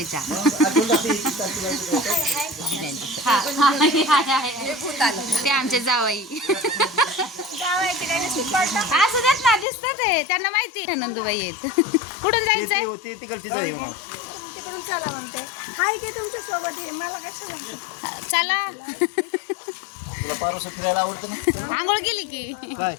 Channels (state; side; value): drops out; right; at 9.7 s